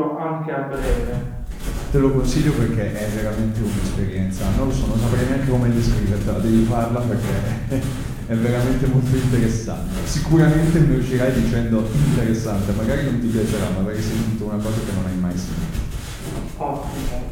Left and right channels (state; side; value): identical; both; correlation 1.00